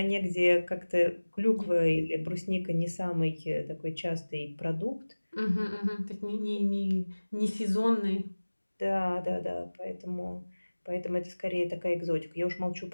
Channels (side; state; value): both; inverted; correlation -1.00